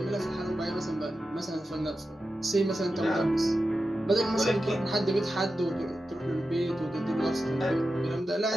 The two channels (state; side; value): normal; both; correlation 0.91